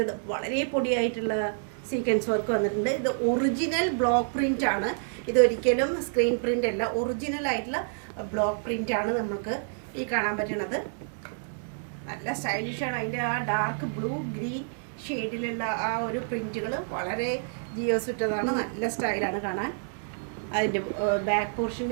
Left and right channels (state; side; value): silent; left; 59 dB below the other